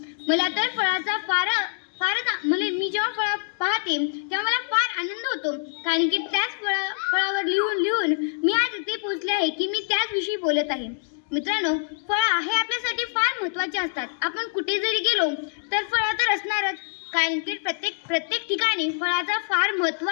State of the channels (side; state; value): right; silent; digital silence